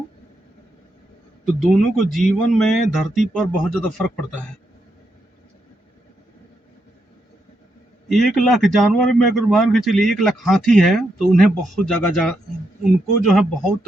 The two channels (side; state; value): both; normal; correlation 0.81